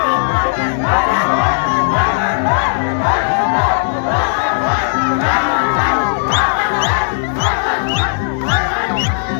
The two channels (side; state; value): right; silent; digital silence